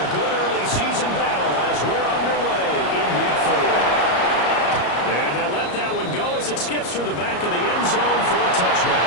good early season battle as we're underway in Week 4. And they'll let that one go as it skips through the back of the end zone for a touchdown.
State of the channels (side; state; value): right; late; 34 ms